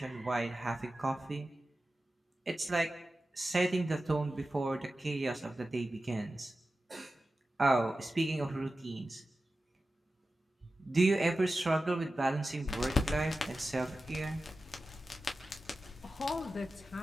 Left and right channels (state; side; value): normal; both; correlation 0.94